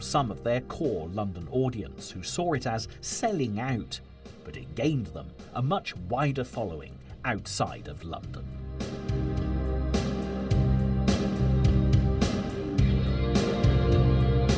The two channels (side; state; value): both; identical; correlation 1.00